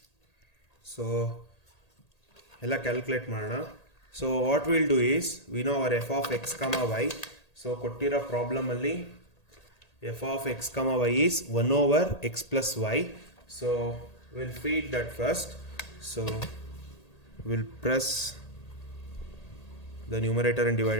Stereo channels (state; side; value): late; right; 1.8 ms